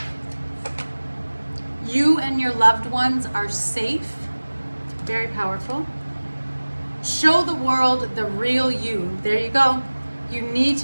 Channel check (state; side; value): inverted; both; correlation -1.00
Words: You and your loved ones are safe. Very powerful. Show the world the real you. There you go. You need